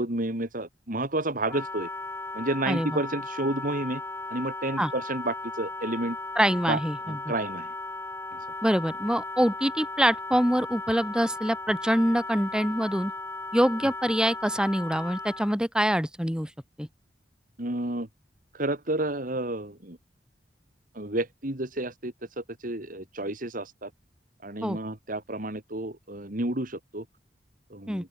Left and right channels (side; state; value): both; normal; correlation 0.73